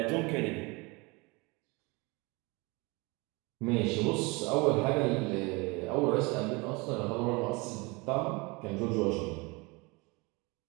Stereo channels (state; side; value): quieter; left; 26.5 dB